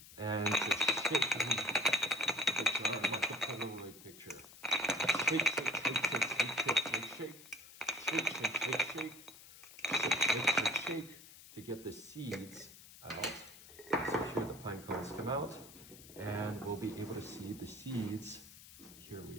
and to shake the jar. I'm going to put a little picture. Shake, shake, shake, shake, shake, shake, shake, shake, shake, shake. Shake to get the seeds out. So here the pine cones come out, and we'll be able to see the seeds. Here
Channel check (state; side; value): noise; left; hiss, 18 dB below the sound